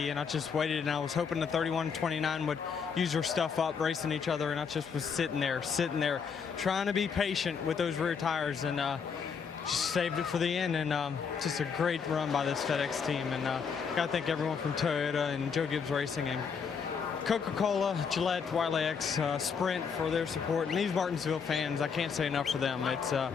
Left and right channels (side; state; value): right; quieter; 6.2 dB